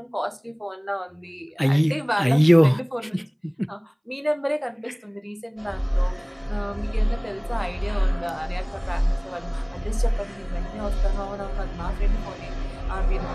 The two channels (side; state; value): both; identical; correlation 1.00